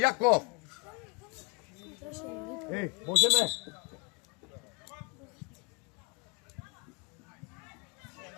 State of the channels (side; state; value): right; quieter; 31.7 dB